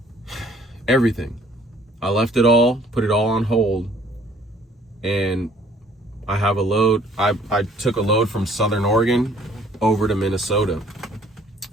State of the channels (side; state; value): both; normal; correlation 0.59